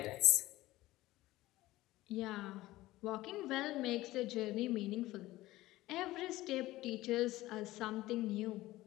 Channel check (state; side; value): quieter; right; 17.4 dB